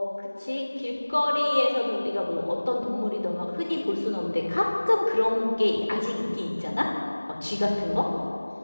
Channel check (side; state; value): both; inverted; correlation -1.00